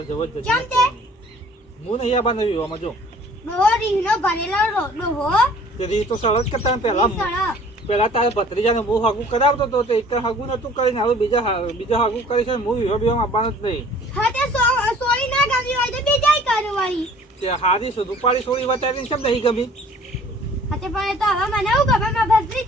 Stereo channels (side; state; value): both; normal; correlation 0.52